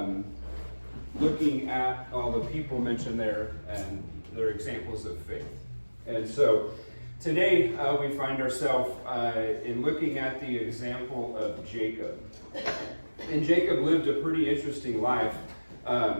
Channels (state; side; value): inverted; both; correlation -1.00